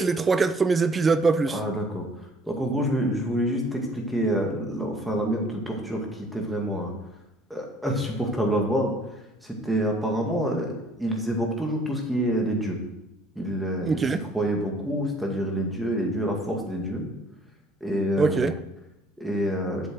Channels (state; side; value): normal; both; correlation 0.57